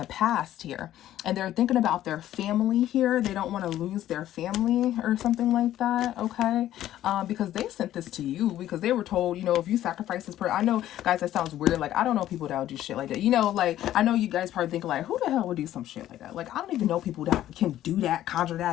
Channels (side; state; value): right; quieter; 12.9 dB